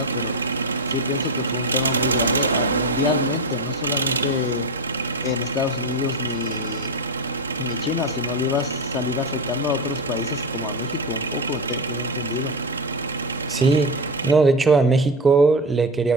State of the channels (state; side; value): normal; both; correlation 0.17